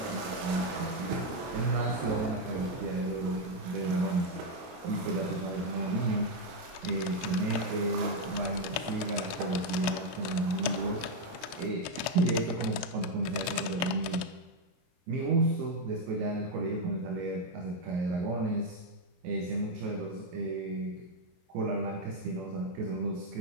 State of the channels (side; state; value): left; late; 22 ms